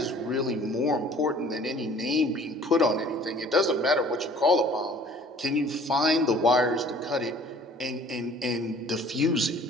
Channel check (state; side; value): normal; both; correlation 0.51